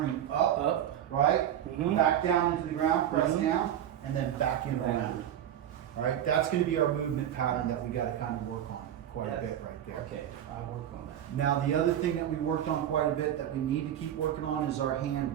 up, Up. right? Mhm. Back down into the ground, press Mhm. down, and then back in Down. around. Right? That's going to be our movement pattern that we got to kind of work on quite a Yes. bit right there. Okay, I'll work on that. Now, the other thing that we worked on quite a bit that we need to keep working on is our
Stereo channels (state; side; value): quieter; left; 10.7 dB